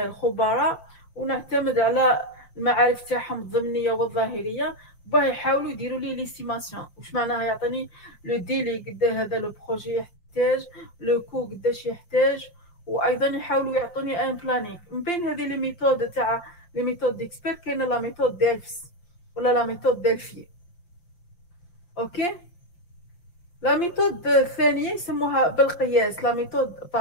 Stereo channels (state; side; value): late; right; 5.7 ms